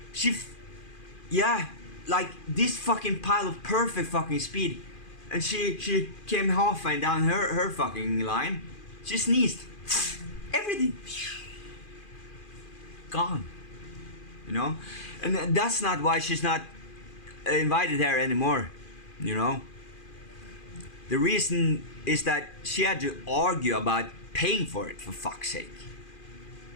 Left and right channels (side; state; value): right; late; 2.4 ms